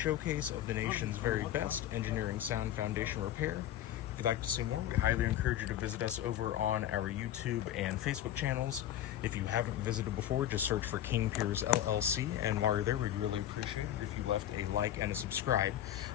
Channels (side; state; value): right; quieter; 11.8 dB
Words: of the nation's very best engineering sound foundation repair. If you'd like to see more, we highly encourage you to visit us over on our YouTube and Facebook channels. If you haven't visited before, just search for King Piers LLC, and while you're there, we'd really appreciate it if you left a like and a subscribe.